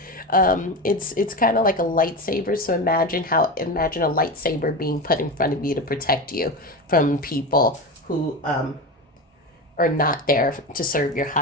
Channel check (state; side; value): normal; both; correlation 0.23